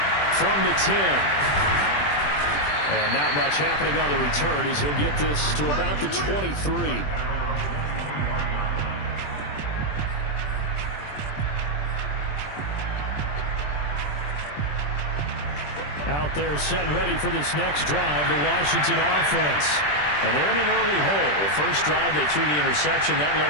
From the 10. And not much happening on the return as he'll get this to about the 23. Out there set and ready for this next drive, the Washington offense. And they're in an early hole. The first drive, they threw the interception. That led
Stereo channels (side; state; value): right; late; 20 ms